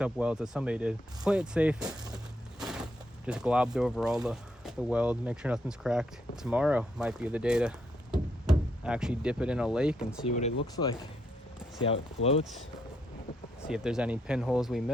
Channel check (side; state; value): both; normal; correlation 0.76